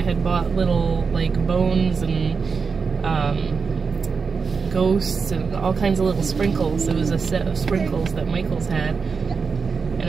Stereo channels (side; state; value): left; quieter; 5.2 dB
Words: had bought little like bones and ghosts and all kinds of little sprinkles. It was a set of sprinkles that Michael's had. And